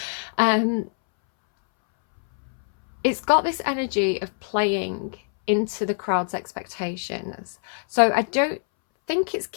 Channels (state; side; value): silent; right; 63 dB below the other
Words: It's got this energy of playing into the crowd's expectations. So I don't think it's